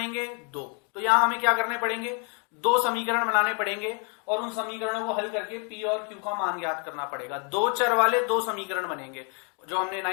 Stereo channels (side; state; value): right; quieter; 37.1 dB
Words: दो। तो यहां हमें क्या करने पड़ेंगे? दो समीकरण बनाने पड़ेंगे, और उन समीकरणों को हल करके P और Q का मान ज्ञात करना पड़ेगा। दो चर वाले दो समीकरण बनेंगे, जो हमने